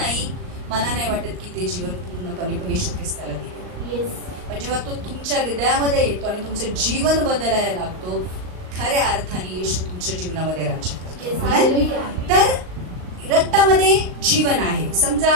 मला नाही वाटत की ते जीवन पूर्णपणे येशू ख्रिस्ताला दिले. पण जेव्हा तो तुमच्या हृदयामध्ये येतो आणि तुमचं जीवन बदलायला लागतो, खऱ्या अर्थाने येशू तुमच्या जीवनामध्ये राज्य करतो. तर रक्तामध्ये जीवन आहे. समजा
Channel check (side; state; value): left; late; 38 ms